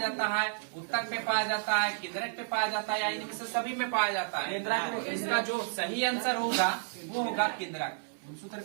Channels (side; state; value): left; silent; digital silence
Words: है? उत्तक पे पाया जाता है, केंद्रक पे पाया जाता है, या इनमें से सभी में पाया जाता है? तो इसका जो सही आंसर होगा वो होगा केंद्रक। गुणसूत्र